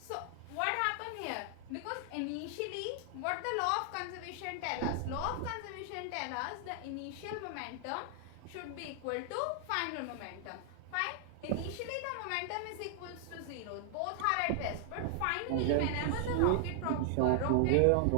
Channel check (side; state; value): both; different; correlation 0.00